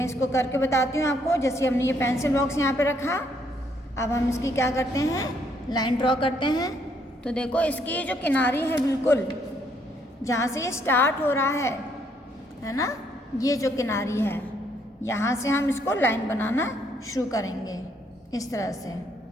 इसको करके बताती हूँ आपको। जैसे हमने ये पेंसिल बॉक्स यहाँ पे रखा, अब हम इसकी क्या करते हैं, लाइन ड्रॉ करते हैं। तो देखो इसकी जो किनारी है बिल्कुल जहाँ से ये स्टार्ट हो रहा है ना, ये जो किनारी है यहाँ से हम इसको लाइन बनाना शुरू करेंगे इस तरह से।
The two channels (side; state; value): both; normal; correlation 0.70